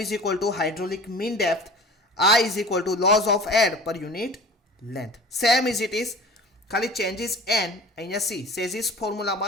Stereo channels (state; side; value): normal; both; correlation 0.41